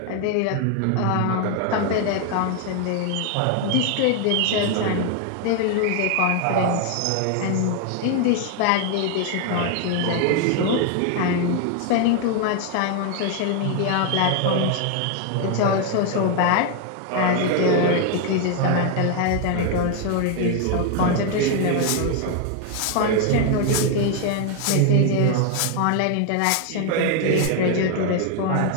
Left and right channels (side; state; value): both; different; correlation 0.01